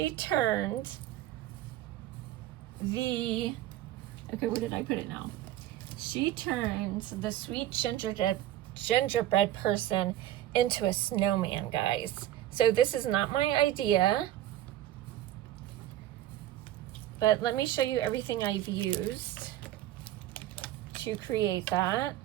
turned the, okay, where did I put it now? She turned the sweet gingerbread person into a snowman, guys. So this is not my idea, but let me show you everything I've used to create that.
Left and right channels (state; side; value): quieter; left; 13.3 dB